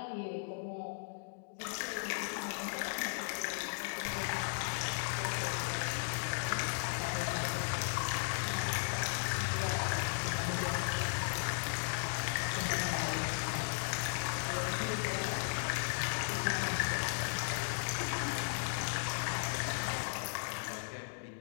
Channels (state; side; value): silent; right; digital silence